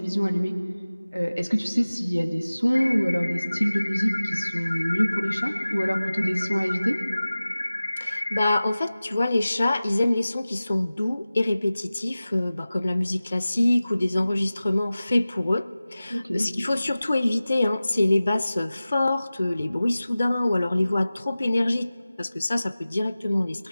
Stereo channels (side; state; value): both; inverted; correlation -0.97